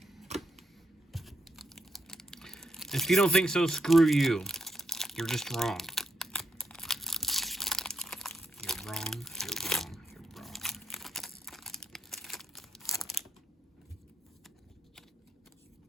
If you don't think so, screw you. You're just wrong. You're wrong, you're wrong, you're wrong.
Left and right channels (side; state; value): both; normal; correlation 0.80